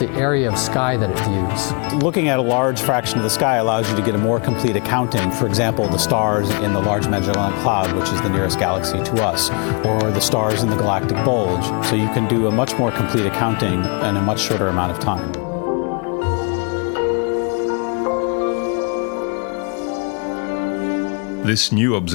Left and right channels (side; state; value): right; quieter; 34.6 dB